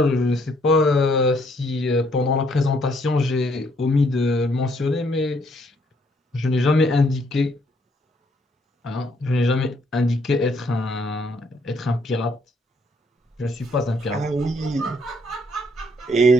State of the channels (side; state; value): both; normal; correlation 0.68